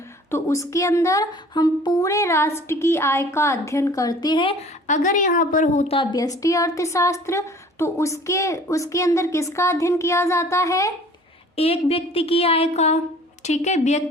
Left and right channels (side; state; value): both; normal; correlation 0.49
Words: तो उसके अंदर हम पूरे राष्ट्र की आय का अध्ययन करते हैं। अगर यहाँ पर होता व्यष्टि अर्थशास्त्र तो उसके अंदर किसका अध्ययन किया जाता है? एक व्यक्ति की आय का। ठीक है,